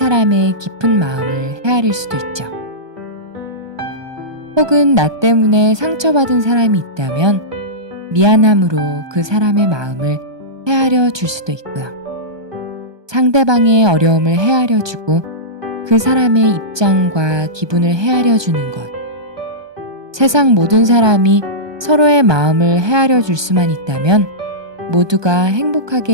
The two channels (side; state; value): left; late; 1.2 ms